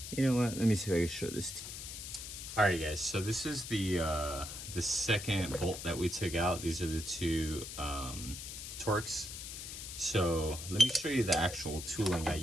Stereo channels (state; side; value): noise; left; hiss, 9 dB below the sound